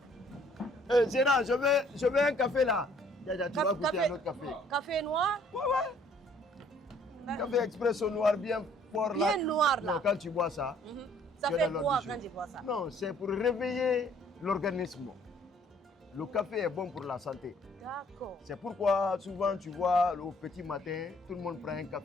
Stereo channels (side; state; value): both; normal; correlation 0.61